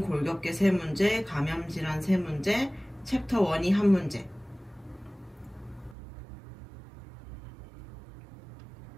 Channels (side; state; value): left; drops out; at 6.0 s